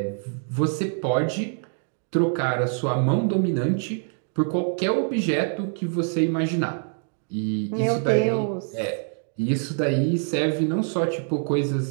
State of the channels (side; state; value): left; silent; 58 dB below the other